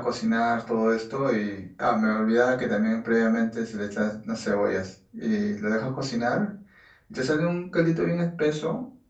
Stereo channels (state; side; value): identical; both; correlation 1.00